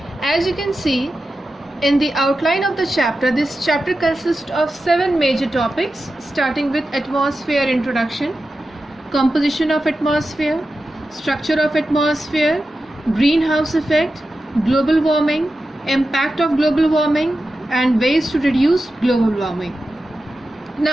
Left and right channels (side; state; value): both; normal; correlation 0.92